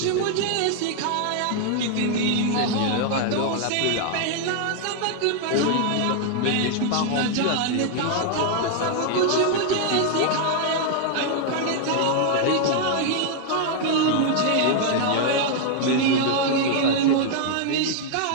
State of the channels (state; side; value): different; both; correlation 0.00